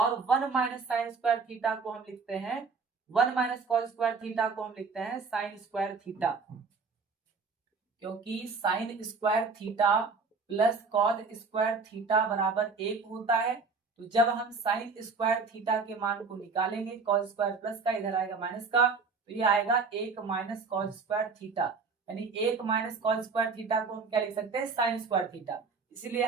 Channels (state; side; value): quieter; left; 4.7 dB